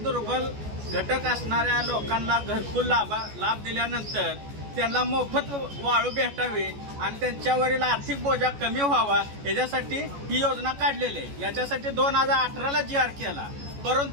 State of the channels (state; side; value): late; left; 14 ms